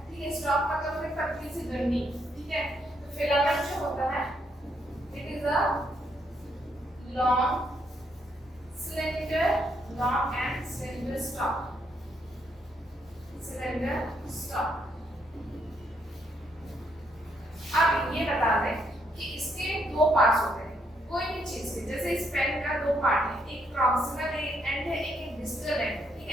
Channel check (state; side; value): normal; both; correlation 0.75